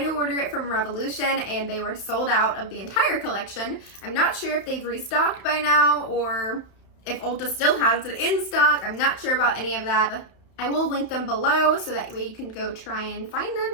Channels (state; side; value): late; right; 31 ms